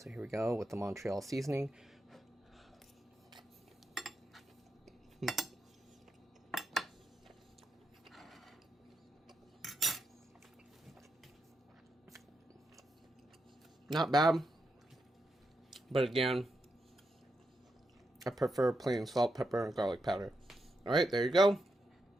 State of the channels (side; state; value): both; normal; correlation 0.84